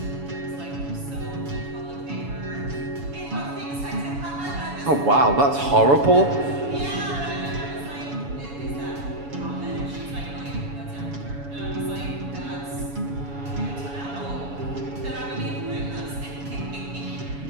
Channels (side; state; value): left; late; 7.1 ms